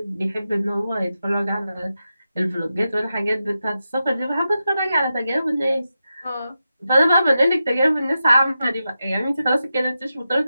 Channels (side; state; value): both; inverted; correlation -0.90